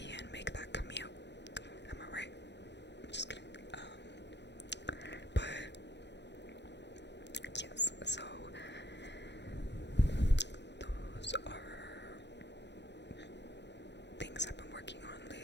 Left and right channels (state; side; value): late; right; 0.51 ms